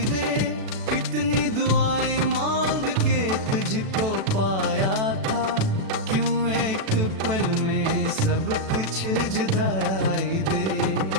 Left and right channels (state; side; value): late; left; 37 ms